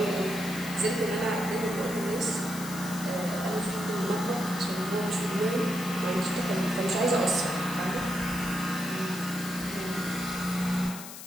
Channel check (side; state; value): left; noise; hiss, 12 dB below the sound